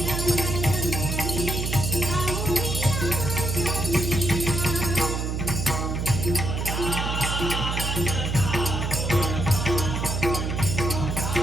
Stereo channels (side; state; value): right; noise; hum, 2 dB below the sound